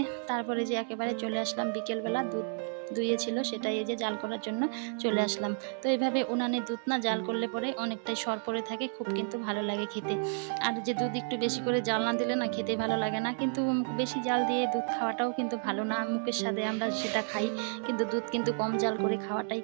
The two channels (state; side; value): silent; left; 57 dB below the other